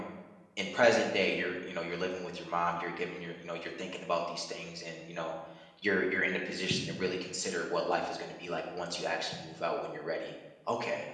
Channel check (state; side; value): identical; both; correlation 1.00